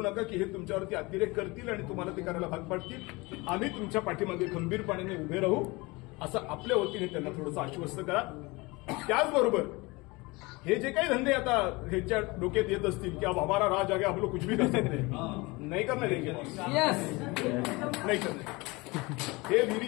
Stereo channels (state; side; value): quieter; right; 24.2 dB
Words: नका की हे तुमच्यावरती अतिरेक करतील आणि तुम्हाला ते करायला भाग पाडतील. आम्ही तुमच्या पाठीमागे खंबीरपणाने उभे राहू, असं आपल्या वतीने त्यांना थोडंसं आश्वस्त करा. त्याचबरोबर हे जे काही धंदे आता ह्यांच्या डोक्यात येत असतील की अब हमारा राज आगे आप लोग कुछ भी कर सकते नाही करणार नाही करणार. हे